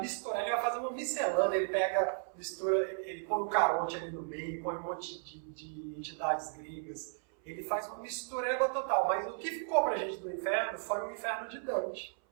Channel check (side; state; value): left; silent; 54 dB below the other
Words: ele vai fazer uma miscelânea, ele pega, mistura, ele põe o Caronte ali no meio, põe um monte de entidades gregas, ele faz uma mistureba total. Mas o que ficou pra gente do inferno foi o inferno de Dante,